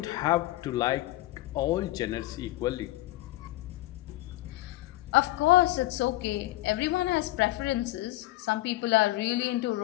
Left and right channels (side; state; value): right; quieter; 17.5 dB